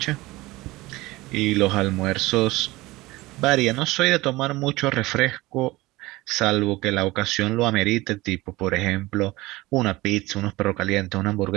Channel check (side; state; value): left; quieter; 19.9 dB